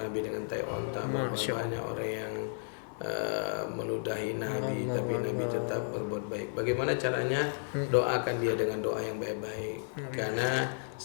dengan tai onta, berapa banyak orang yang meludahi Nabi, tapi Nabi tetap berbuat baik. Bagaimana caranya? Doakan dia dengan doa yang baik-baik. Karena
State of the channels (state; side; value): silent; right; 56 dB below the other